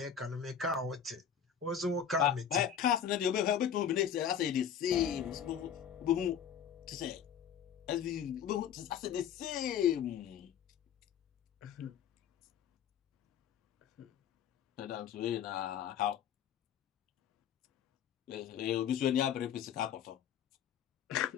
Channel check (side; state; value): right; quieter; 8.5 dB